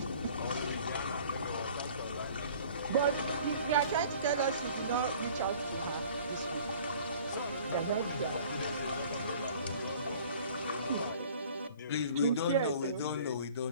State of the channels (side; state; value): both; inverted; correlation -0.50